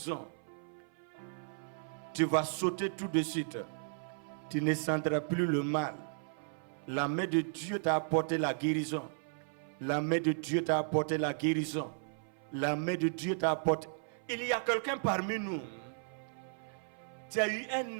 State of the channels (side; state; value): left; silent; 54 dB below the other